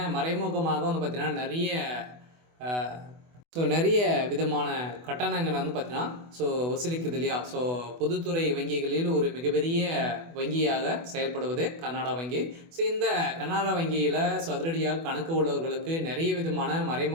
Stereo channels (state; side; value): late; left; 24 ms